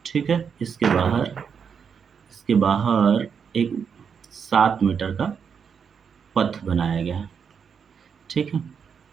ठीक है, इसके बाहर एक 7 मीटर का पथ बनाया गया है। ठीक है,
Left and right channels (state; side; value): quieter; left; 6.7 dB